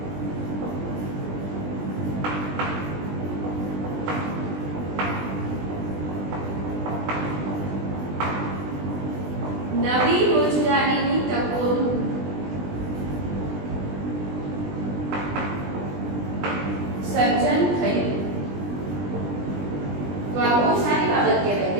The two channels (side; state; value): left; late; 20 ms